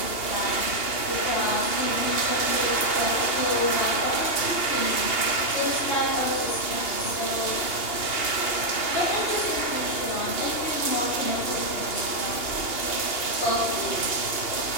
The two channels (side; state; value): right; late; 2.8 ms